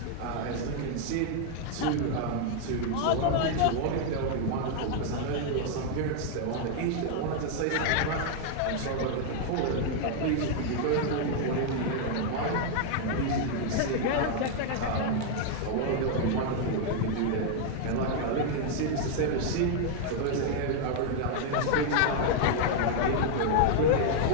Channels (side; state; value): both; different; correlation 0.00